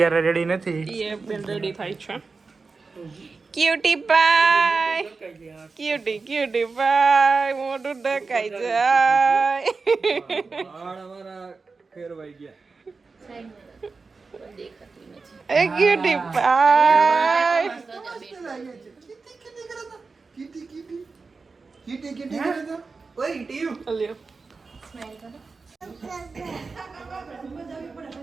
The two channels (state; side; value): quieter; left; 4.3 dB